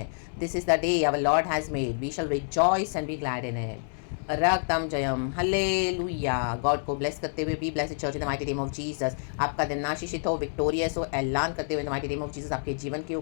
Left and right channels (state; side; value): silent; right; 59 dB below the other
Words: This is the day our lord has made, we shall rejoice and be glad in it. रक्तम जयम, हालेलुया। गॉड को ब्लेस करते हुए, be blessed church in the mighty name of Jesus. आपका दिन आशीषित हो, विक्टोरियस हो, ऐलान करते हुए in the mighty name of Jesus आपके जीवन के